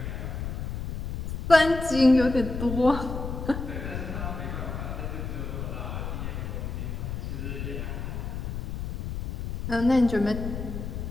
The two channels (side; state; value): left; noise; rumble, 5 dB below the sound